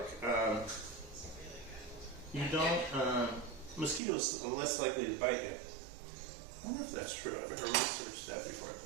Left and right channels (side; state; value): left; drops out; at 4.0 s